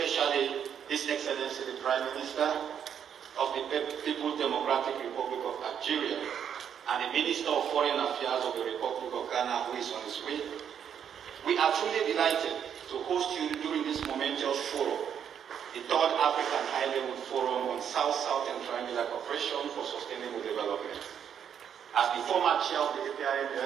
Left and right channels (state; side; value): quieter; left; 8.4 dB